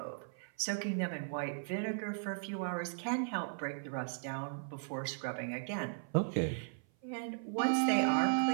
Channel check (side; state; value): left; silent; 53 dB below the other